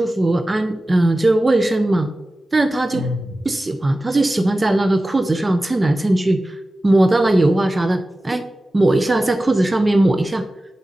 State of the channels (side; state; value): both; normal; correlation 0.95